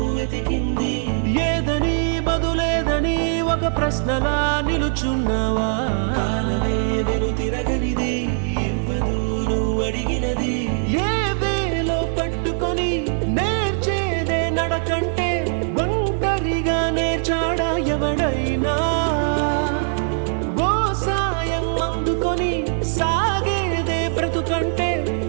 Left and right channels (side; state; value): left; silent; 60 dB below the other